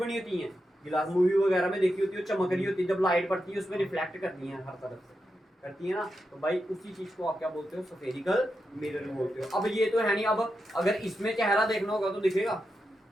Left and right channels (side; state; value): both; normal; correlation 0.87